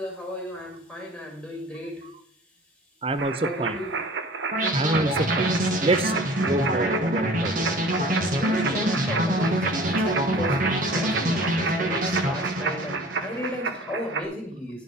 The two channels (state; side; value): normal; both; correlation 0.44